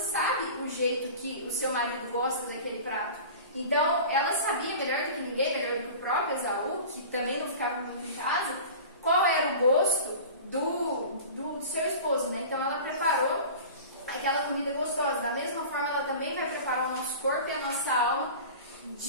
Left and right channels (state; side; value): inverted; both; correlation -0.37